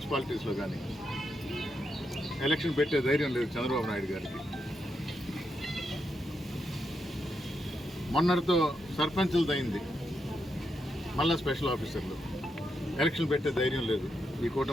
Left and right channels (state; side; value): normal; both; correlation 0.83